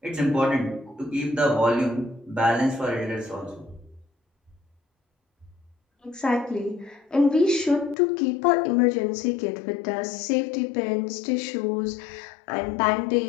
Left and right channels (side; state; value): right; drops out; at 8.0 s